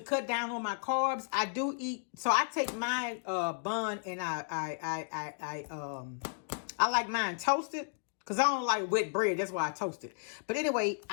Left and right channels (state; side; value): silent; right; digital silence